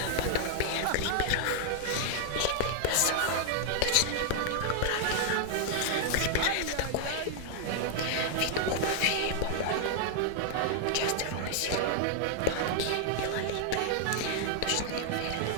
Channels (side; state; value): both; different; correlation 0.00